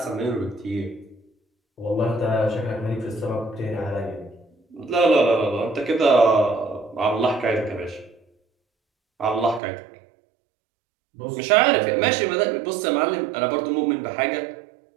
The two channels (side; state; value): left; drops out; at 9.6 s